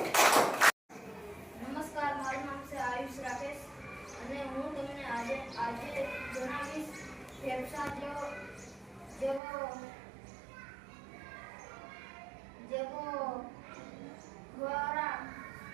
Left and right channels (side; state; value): left; drops out; at 9.4 s